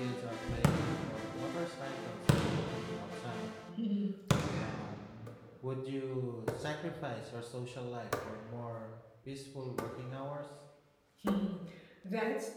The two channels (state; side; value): identical; both; correlation 1.00